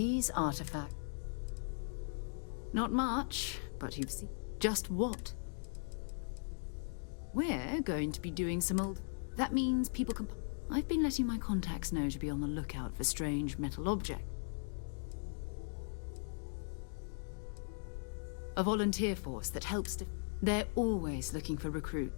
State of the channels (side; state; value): right; silent; digital silence